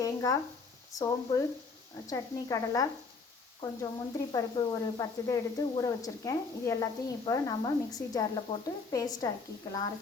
தேங்காய், சோம்பு, சட்னி, கடலை, கொஞ்சம் முந்திரி பருப்பு ஒரு 10 இதை எடுத்து ஊற வச்சுருக்கேன். இது எல்லாத்தையும் இப்போ நம்ம மிக்ஸி ஜாரில் போட்டு பேஸ்ட் ஆக்கிக்கலாம்,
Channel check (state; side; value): quieter; right; 4.5 dB